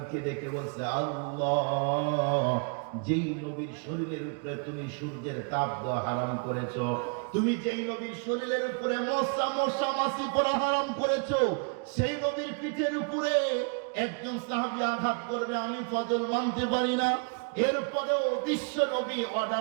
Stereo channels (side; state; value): left; quieter; 38.4 dB